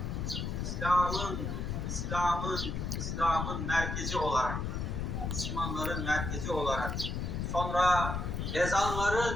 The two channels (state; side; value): noise; left; rumble, 2 dB below the sound